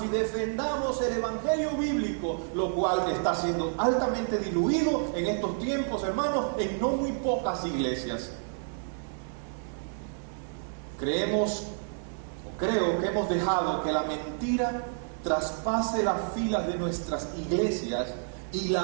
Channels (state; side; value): silent; left; 58 dB below the other